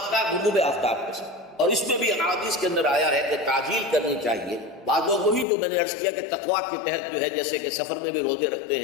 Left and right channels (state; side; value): drops out; right; at 5.5 s